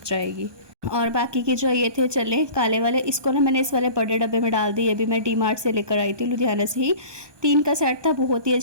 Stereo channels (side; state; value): left; late; 1.2 ms